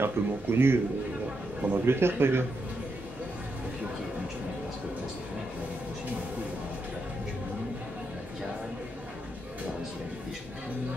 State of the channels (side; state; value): both; normal; correlation 0.82